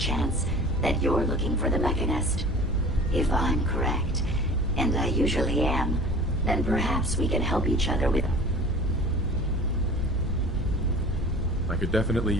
that you're looking for the Mechanist. If I'm correct, and I usually am, then perhaps we can help each other with... I could definitely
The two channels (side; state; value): both; normal; correlation 0.42